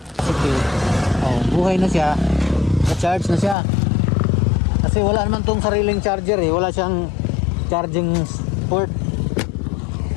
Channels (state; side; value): drops out; right; at 3.6 s